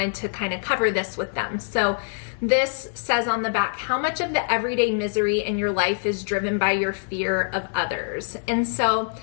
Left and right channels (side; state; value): right; silent; 60 dB below the other